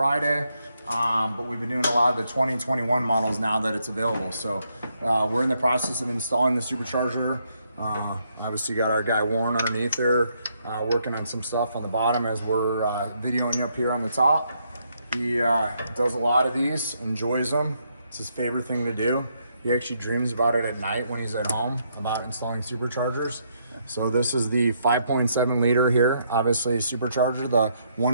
But we've been doing a lot of the 2021 models now that it's available. So we're in the process of installing the supercharger. Obviously got our guy Warren underneath there, working on some stuff on the bottom as we're videoing you up here on the top. He does a lot of these, enjoys them. It's his favorite thing to do. He actually dreams about it at night when he's at home, about installing superchargers. So this is the 5.7 liter here, obviously supercharger, the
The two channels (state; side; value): inverted; both; correlation -0.75